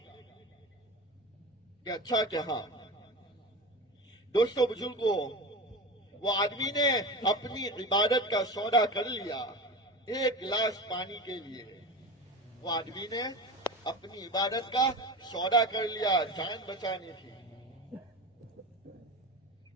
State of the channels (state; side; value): normal; both; correlation 0.29